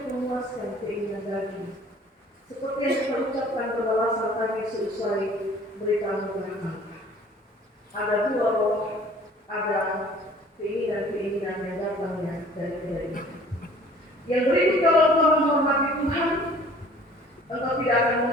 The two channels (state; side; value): normal; both; correlation 0.51